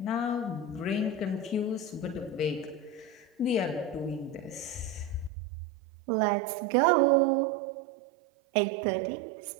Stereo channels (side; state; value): left; drops out; at 5.3 s